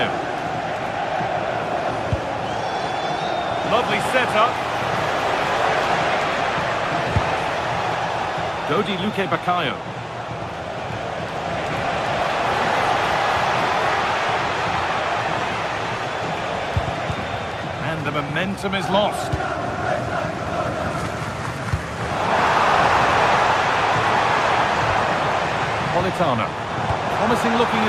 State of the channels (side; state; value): both; identical; correlation 1.00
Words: Lovely setup. Dodi Luque Baccaio. And the momentum is lost. Politano. Promising looking